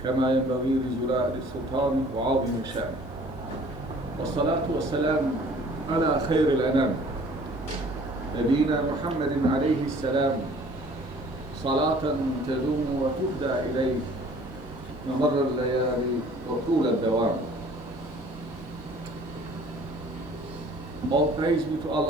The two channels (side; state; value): both; normal; correlation 0.52